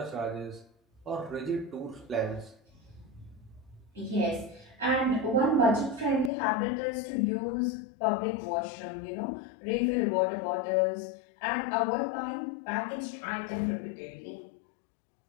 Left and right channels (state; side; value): drops out; right; at 6.3 s